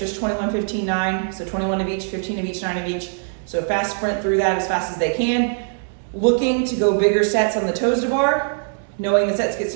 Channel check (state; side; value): silent; left; digital silence